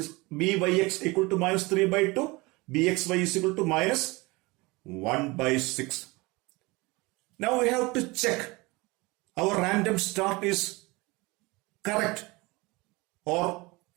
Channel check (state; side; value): quieter; left; 24.1 dB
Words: equal to minus 3 by 2, bxy is equal to minus 1 by 6. Now we have to check our random start is correct or